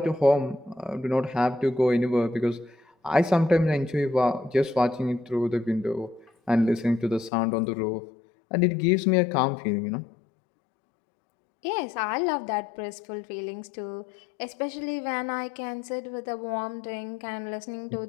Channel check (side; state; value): right; drops out; at 7.3 s